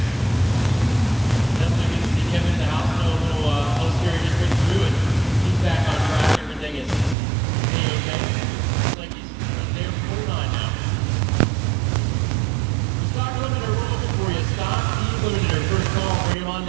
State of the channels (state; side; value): drops out; left; at 7.2 s